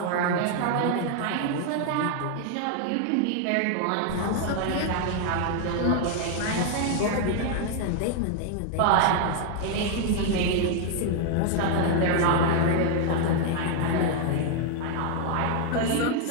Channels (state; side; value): different; both; correlation 0.00